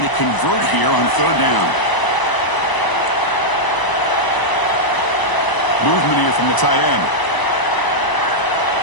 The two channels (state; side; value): late; right; 1.0 ms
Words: to convert here on 3rd down. Movement here from the tight end.